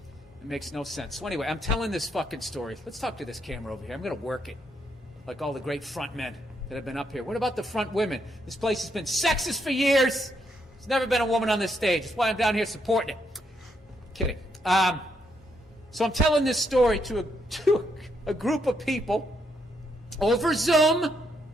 It makes no sense. So anyway, I'm telling this fucking story. Let's talk to this camera over here. I'm going to work it, like all the great front men that have been up here. What about the front women? This place has been sexist for years. There's never been a woman on this stage. That's why I'm down here supporting it. Kidding. So I'm telling this story to a group of people over Zoom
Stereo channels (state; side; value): normal; both; correlation 0.77